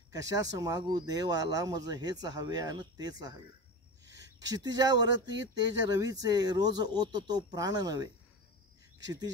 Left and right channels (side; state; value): both; normal; correlation 0.26